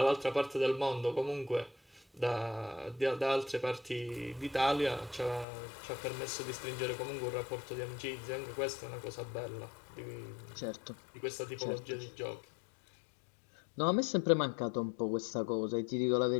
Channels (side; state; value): right; drops out; at 5.5 s